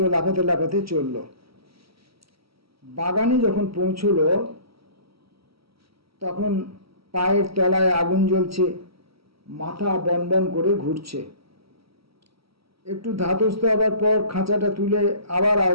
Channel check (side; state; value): left; late; 0.76 ms